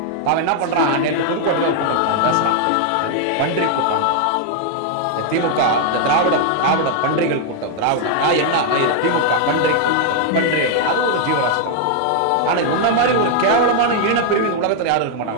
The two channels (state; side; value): different; both; correlation 0.00